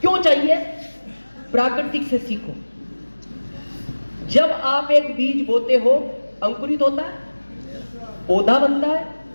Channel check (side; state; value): both; inverted; correlation -1.00